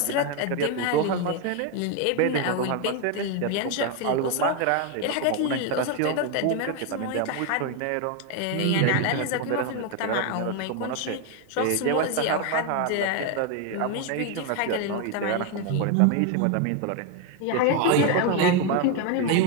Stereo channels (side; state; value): both; different; correlation 0.01